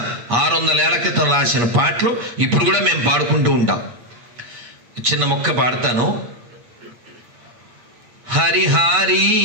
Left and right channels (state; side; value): late; left; 8.4 ms